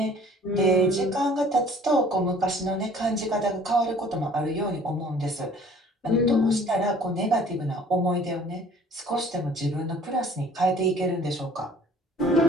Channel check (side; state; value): both; normal; correlation 0.53